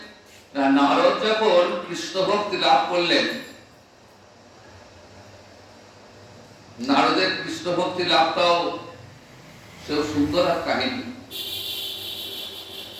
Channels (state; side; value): identical; both; correlation 1.00